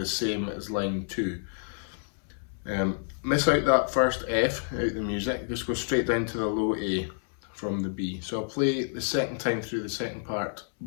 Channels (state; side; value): silent; right; digital silence